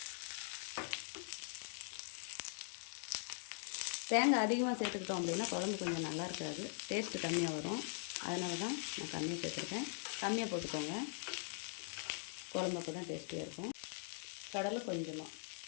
தேங்காய் அதிகமாக சேர்த்துக்கிட்டோம் அப்படின்னா குழம்பு கொஞ்சம் நல்லா இருக்காது, டேஸ்ட்டு கம்மியாக வரும். அதனால தான் நான் கம்மியாக சேர்த்துருக்கேன். கம்மியாக போட்டுக்கோங்க, குழம்பு அப்போ தான் டேஸ்டியாக இருக்கும். கடலை கொஞ்சமாக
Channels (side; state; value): right; silent; digital silence